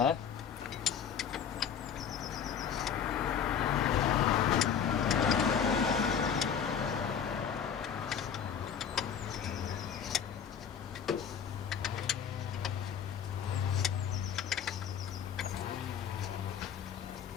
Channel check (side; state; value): right; quieter; 7.8 dB